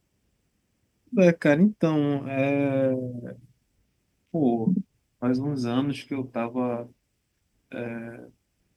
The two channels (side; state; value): both; identical; correlation 1.00